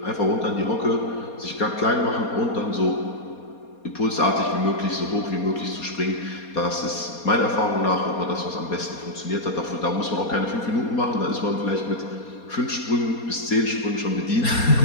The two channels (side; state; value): right; late; 4.2 ms